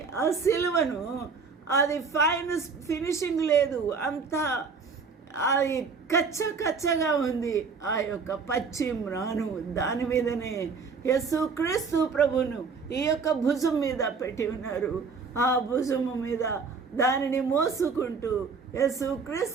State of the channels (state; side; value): quieter; left; 5.1 dB